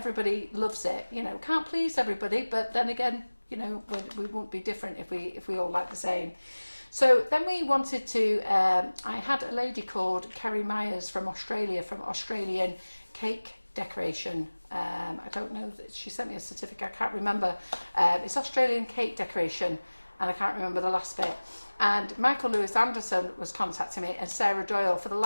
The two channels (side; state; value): both; inverted; correlation -1.00